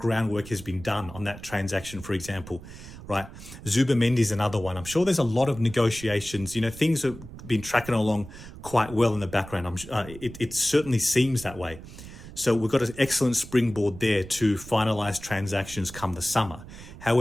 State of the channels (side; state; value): right; noise; rumble, 15 dB below the sound